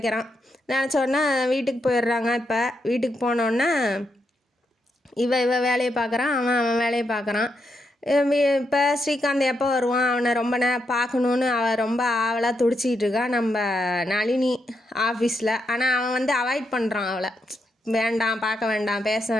நினச்சோன்னா வீட்டுக்கு போயிடுறாங்க. இப்போ வீட்டுக்கு போனோன்னா இவ வேலையை பார்க்குறான், அவன் வேலையை பார்க்குறான். இப்போ ஸ்ரீகாந்த் எப்போ வருவான், அவனை ரொம்ப பார்க்கணுன்னு அவள் ரொம்ப ஆவலாக துடிச்சிக்கிட்டு இருக்கா நம்ம நளினி ஆஃபீஸில். ஆனால் அவன் வந்து அவாய்ட் பண்ணுறான் அவளை, வேண்டாம் பார்க்க வேண்டாம் பேச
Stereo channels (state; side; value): normal; both; correlation 0.82